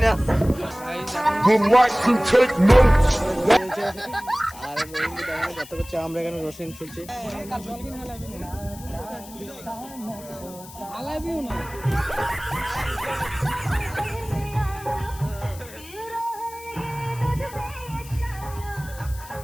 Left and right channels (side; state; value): left; noise; hiss, 18 dB below the sound